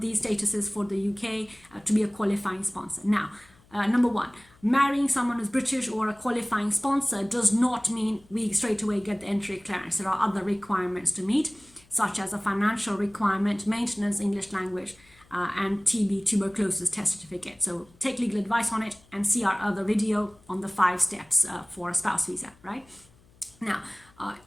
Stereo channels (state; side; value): noise; left; hum, 29 dB below the sound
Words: statuses for the UK to be a qualifying sponsor. Now, number one, marrying someone who's British or a qualifying sponsor does not mean we straight away get the entry clearance. There are other requirements to meet, such as a financial requirement, maintenance, English language, and TB, tuberculosis test certificate. So take legal advice on it and see our other video on the 5 steps for a spouse visa, right? Now,